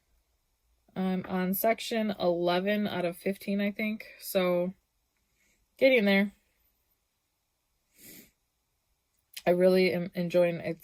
I'm on section 11 out of 15, I think, so getting there. I really am enjoying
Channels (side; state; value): both; identical; correlation 1.00